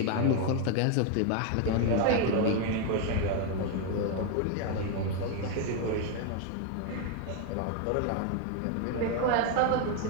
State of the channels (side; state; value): both; different; correlation 0.01